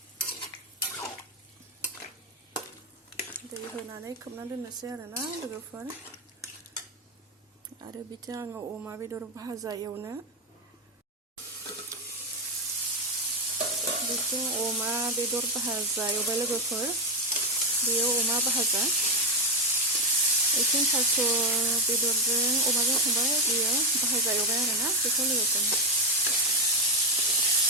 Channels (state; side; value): normal; both; correlation 0.07